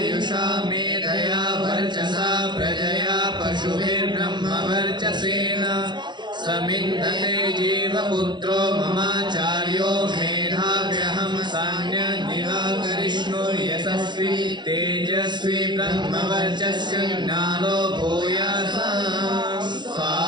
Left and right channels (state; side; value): late; left; 0.22 ms